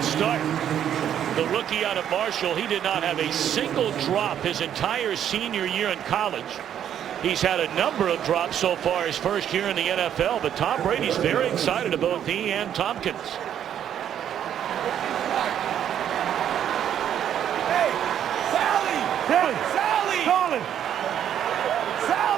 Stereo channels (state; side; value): quieter; left; 9.9 dB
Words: start. The rookie out of Marshall, he did not have a single drop his entire senior year in college. He's had a number of drops so far his first year in the NFL, but Tom Brady's very excited about he and Tompkins. Hey, Sally. Sally. Sally. Solid.